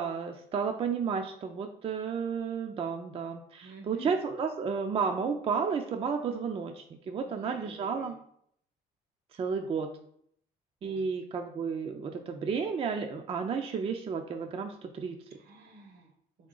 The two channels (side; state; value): left; quieter; 5.5 dB